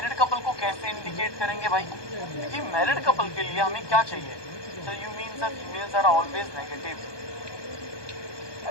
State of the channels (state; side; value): late; right; 1.2 ms